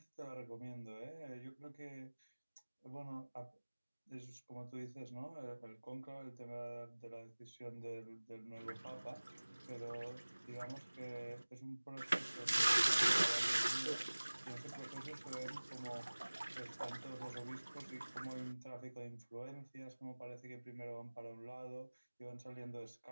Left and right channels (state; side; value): inverted; both; correlation -1.00